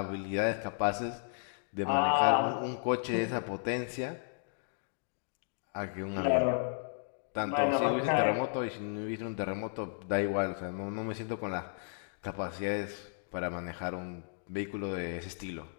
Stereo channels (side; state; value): right; silent; digital silence